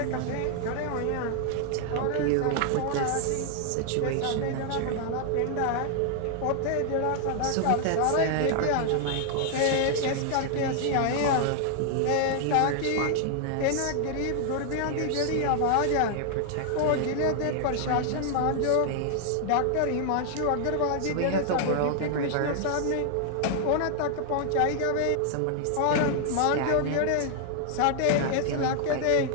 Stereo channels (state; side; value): different; both; correlation 0.00